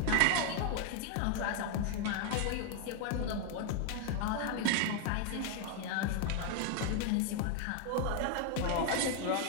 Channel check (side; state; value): both; different; correlation 0.01